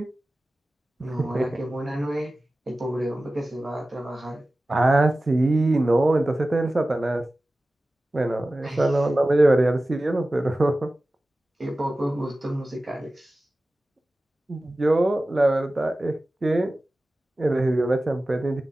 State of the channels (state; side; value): normal; both; correlation 0.96